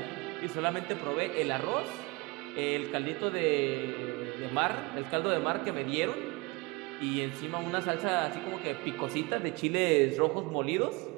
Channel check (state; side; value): quieter; left; 25.4 dB